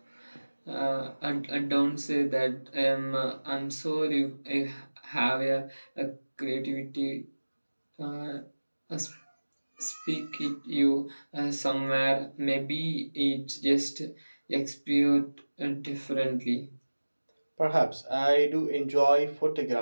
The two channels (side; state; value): both; inverted; correlation -1.00